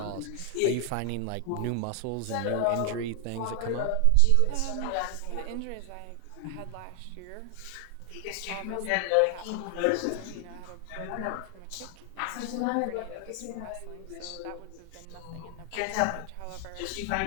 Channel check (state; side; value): different; both; correlation 0.00